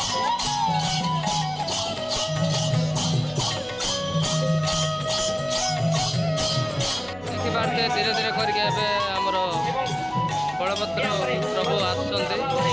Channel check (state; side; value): noise; right; hum, 25 dB below the sound